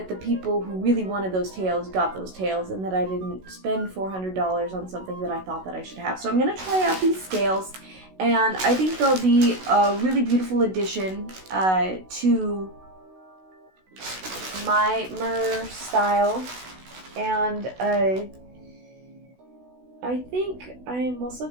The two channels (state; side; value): late; left; 16 ms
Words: the people who really wanted those tails got those tails, and that I didn't spend $400 on something that I thought that I should have. So I'm gonna try out these scales, and I think they'll be a really beautiful addition to my mer style. And I think I'm also